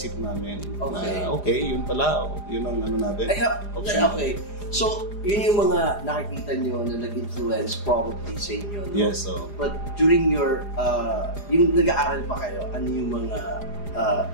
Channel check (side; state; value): right; late; 4.9 ms